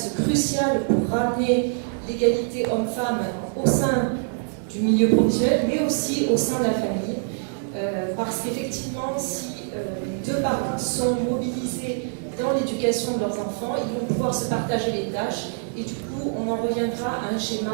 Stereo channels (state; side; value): silent; left; 57 dB below the other